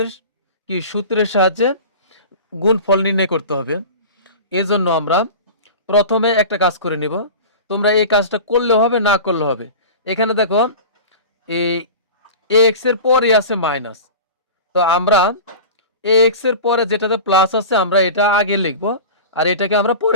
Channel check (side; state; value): both; inverted; correlation -0.34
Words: কি সূত্রের সাহায্যে গুণফল নির্ণয় করতে হবে। এই জন্য আমরা প্রথমে একটা কাজ করে নিব, তোমরা এই কাজটা করলেও হবে না করলেও হবে। এখানে দেখো এই এক্স এর পরে আছে মাইনাস, তো আমরা এক্স এর পরে যেটাতে প্লাস আছে আমরা এটা আগে লিখব আর এটাকে আমরা